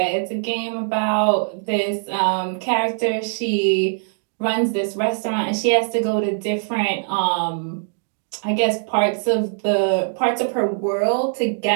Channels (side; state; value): left; silent; digital silence